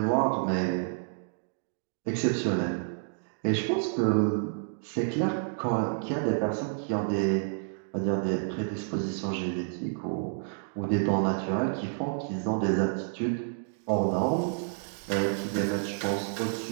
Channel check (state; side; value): silent; left; digital silence